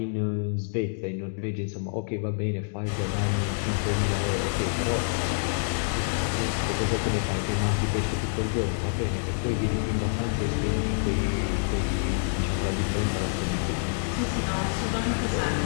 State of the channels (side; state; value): right; silent; digital silence